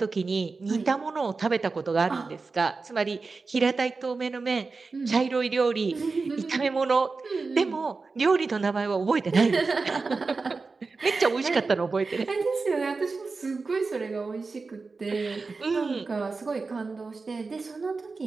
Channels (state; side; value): quieter; left; 4.1 dB